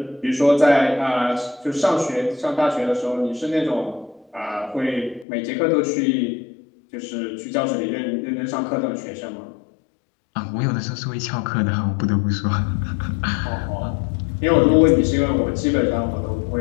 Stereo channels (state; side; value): drops out; right; at 5.2 s